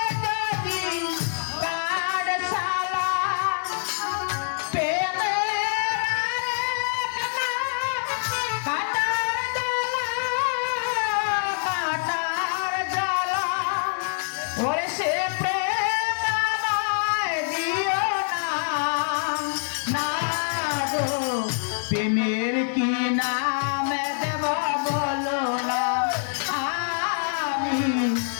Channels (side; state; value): right; silent; digital silence